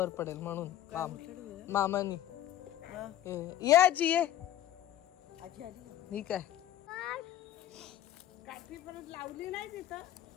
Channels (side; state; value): right; quieter; 12.6 dB